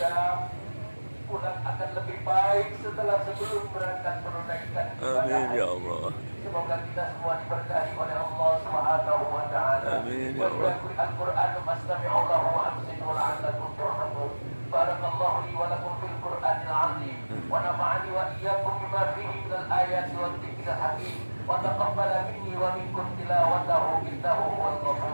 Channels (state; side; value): inverted; both; correlation -1.00